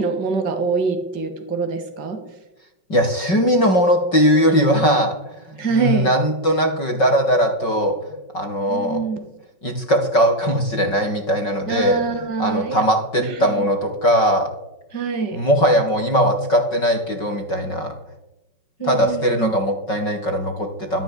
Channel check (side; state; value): right; late; 5.4 ms